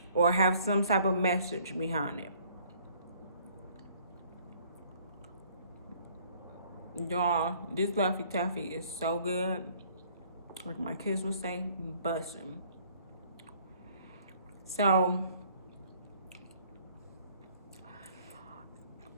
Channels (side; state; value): both; inverted; correlation -0.59